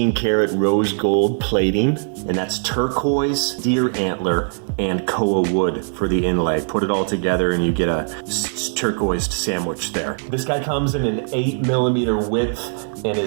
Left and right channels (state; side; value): silent; left; digital silence